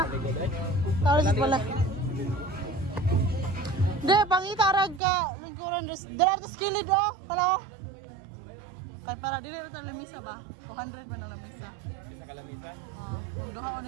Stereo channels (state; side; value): drops out; left; at 5.0 s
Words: Tawlis sa balay. De, pangita rag ka lingkuran dala ta skilid oh. Hello. Kay para dili ra ta lamisa ba? 200 man ang lamisa. Isa ka lamisa? Ah, kung duha